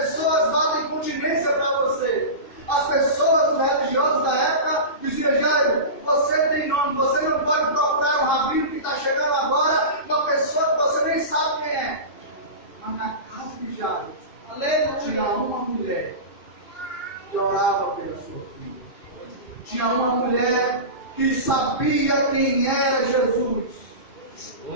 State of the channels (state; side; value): late; right; 2.6 ms